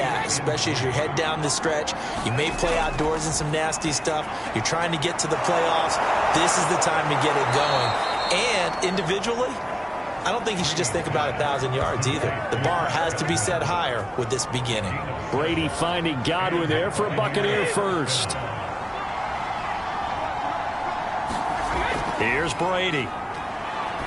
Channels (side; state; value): both; identical; correlation 1.00